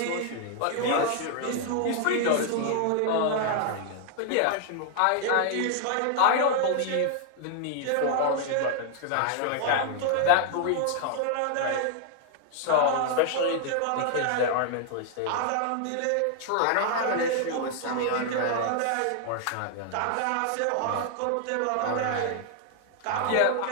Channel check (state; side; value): different; both; correlation 0.00